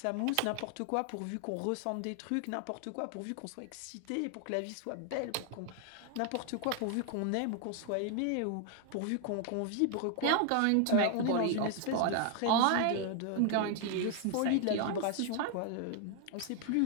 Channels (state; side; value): different; both; correlation 0.00